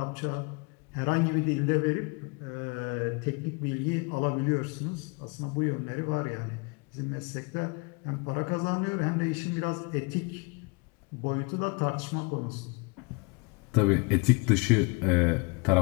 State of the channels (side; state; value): right; quieter; 30.4 dB